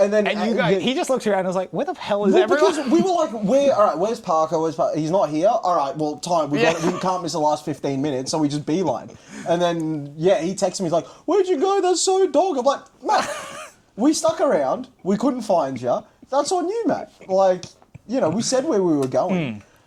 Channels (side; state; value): both; identical; correlation 1.00